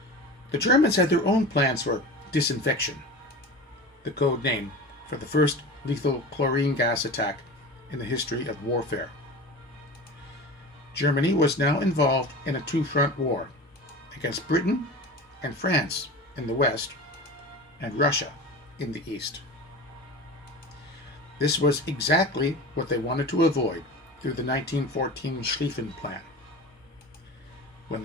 The Germans had their own plans for disinfection, the code name for the first lethal chlorine gas attack in the history of warfare. Germany was now involved in a two-front war against Britain and France in the west and Russia in the east. This was exactly what they wanted to avoid through the 1914 Schlieffen Plan. When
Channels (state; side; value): normal; both; correlation 0.33